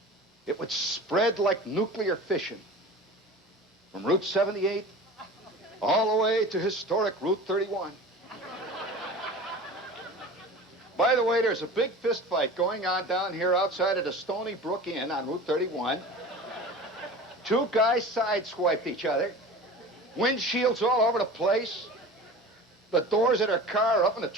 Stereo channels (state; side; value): normal; both; correlation 0.36